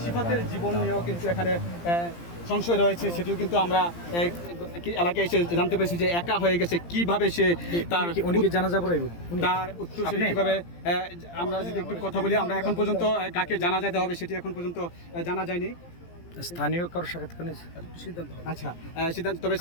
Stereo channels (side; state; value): right; late; 17 ms